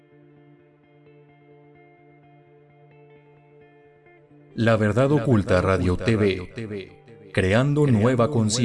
La Verdad Oculta Radio TV. Creando nueva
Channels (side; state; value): both; identical; correlation 1.00